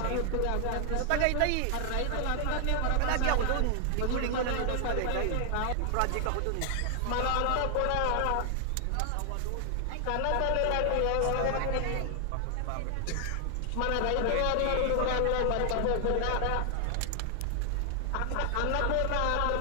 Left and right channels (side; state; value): both; different; correlation 0.00